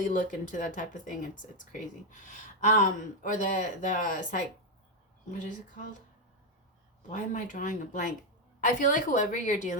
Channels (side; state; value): both; normal; correlation 0.04